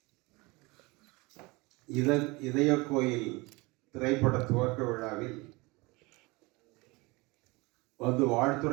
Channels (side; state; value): left; quieter; 24.5 dB